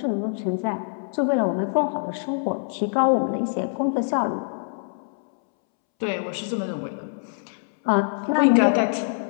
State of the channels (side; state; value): right; silent; 62 dB below the other